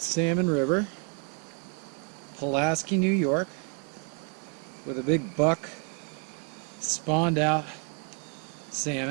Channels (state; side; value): quieter; left; 37.6 dB